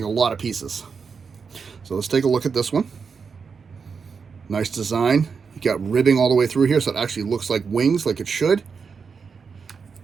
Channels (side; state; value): left; quieter; 5.6 dB